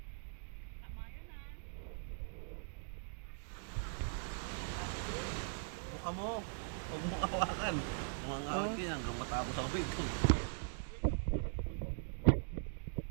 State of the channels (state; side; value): silent; left; digital silence